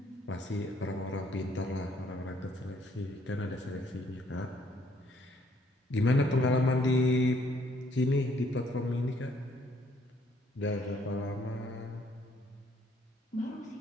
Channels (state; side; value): normal; both; correlation 0.66